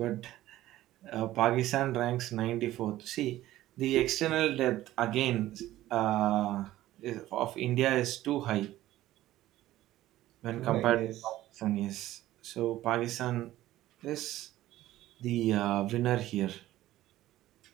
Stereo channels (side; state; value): left; quieter; 15.0 dB